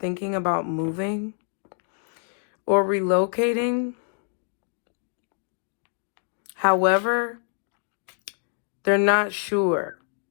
about moving or relocating. However, they're not sure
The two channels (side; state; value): right; silent; 56 dB below the other